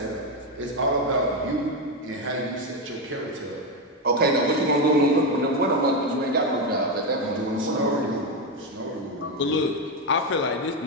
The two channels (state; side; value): normal; both; correlation 0.10